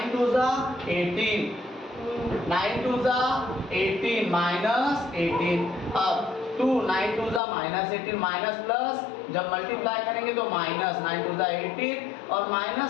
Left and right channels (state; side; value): drops out; right; at 7.4 s